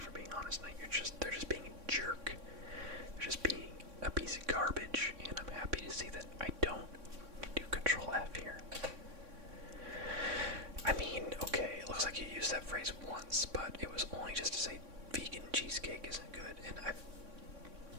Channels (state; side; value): late; left; 3.6 ms